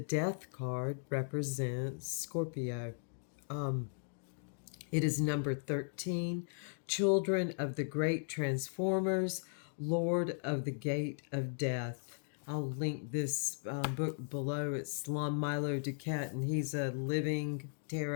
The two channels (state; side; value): silent; right; digital silence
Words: card represents Scorpio. It is number 13, Children of the Great Transformers, Lord of the Gate of Death. I'll link this book below. It's Lon Milo Duquette, and he's a living